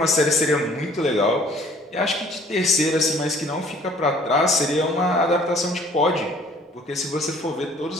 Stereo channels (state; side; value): normal; both; correlation 0.55